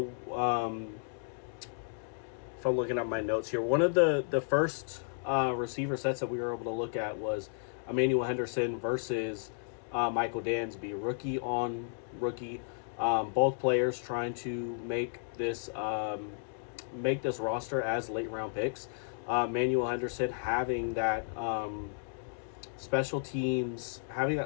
if I'm looking at my notes here, one of the first receiver sets that we were able to look at was Emmanuel Henderson versus Michael Dansby, rookie on rookie. Both players trying to make this roster as late round picks. Emmanuel Henderson having that special teams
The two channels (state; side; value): silent; right; digital silence